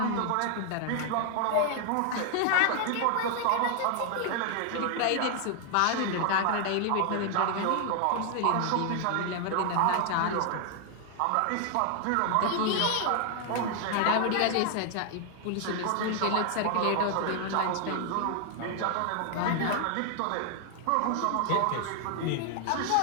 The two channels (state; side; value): different; both; correlation 0.00